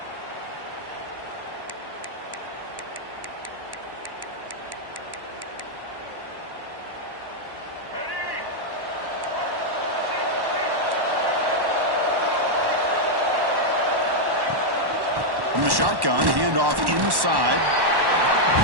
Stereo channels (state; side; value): late; left; 1.1 ms